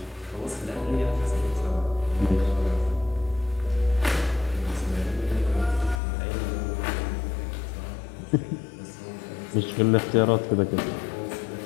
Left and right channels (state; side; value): drops out; right; at 6.0 s